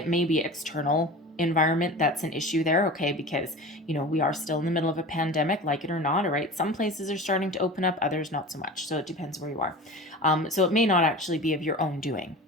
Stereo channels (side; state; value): both; normal; correlation 0.35